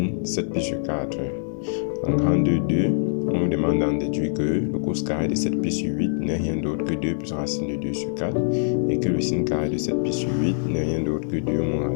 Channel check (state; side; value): silent; right; digital silence